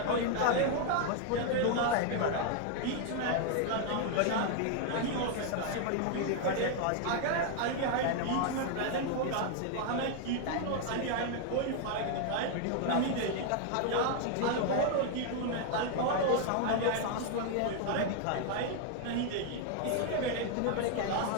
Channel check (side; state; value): both; different; correlation 0.00